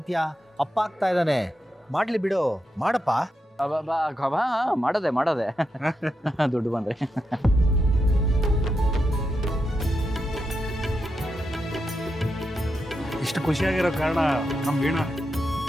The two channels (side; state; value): both; normal; correlation 0.86